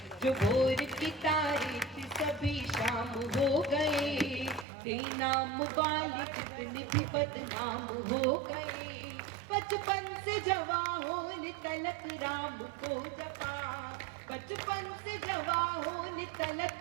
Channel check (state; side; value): drops out; left; at 4.7 s